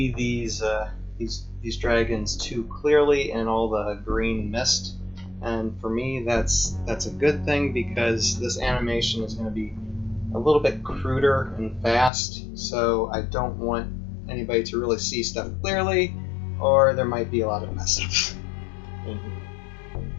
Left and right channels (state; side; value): drops out; right; at 12.1 s